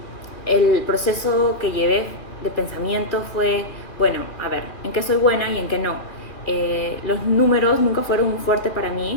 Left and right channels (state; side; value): late; right; 2.4 ms